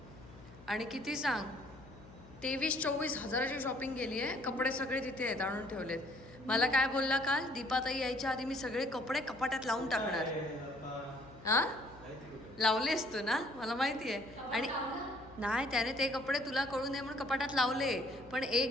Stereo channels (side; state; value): left; noise; hum, 20 dB below the sound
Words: आणि किती सांग 23-24 हजाराची शॉपिंग केली आहे. कपडे सगळे तिथे आहेत, आणून ठेवलेत. मला काय बोलला काल, दीपाताई यायच्या आधी मी सगळे कपडे कपाट्यात लावून टाकणार. हा लावले असतो ना, मला माहिती आहे. आणि नाही, त्याने ते कपडे तुला कळू नये म्हणून कपाटात लावले, पण